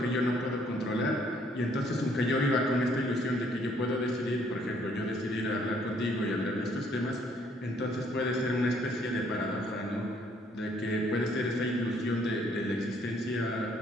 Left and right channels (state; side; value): normal; both; correlation 0.65